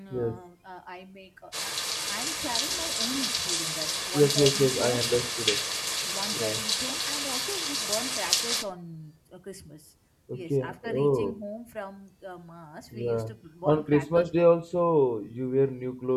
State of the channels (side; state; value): both; identical; correlation 1.00